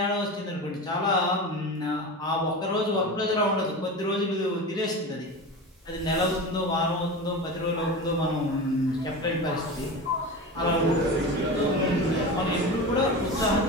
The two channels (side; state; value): both; normal; correlation 0.27